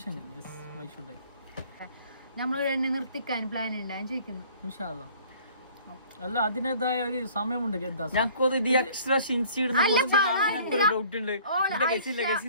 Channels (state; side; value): inverted; both; correlation -0.53